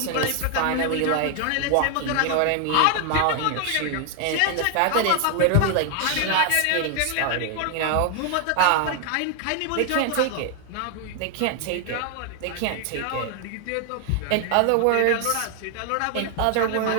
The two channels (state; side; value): different; both; correlation 0.00